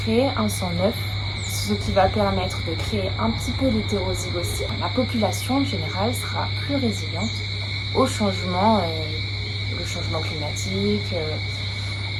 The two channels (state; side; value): identical; both; correlation 1.00